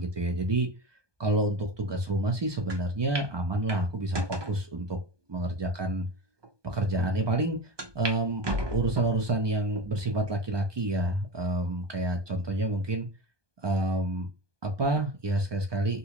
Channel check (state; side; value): late; left; 1.2 ms